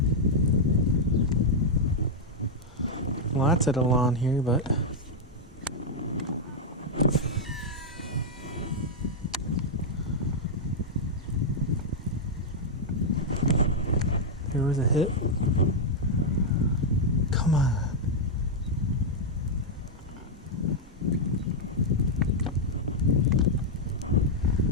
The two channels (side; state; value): both; normal; correlation -0.03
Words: Lots of the lawn here, but there was a hit. Come on.